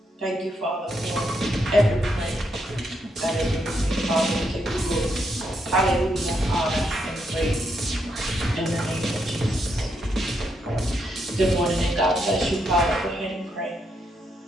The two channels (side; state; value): both; normal; correlation 0.79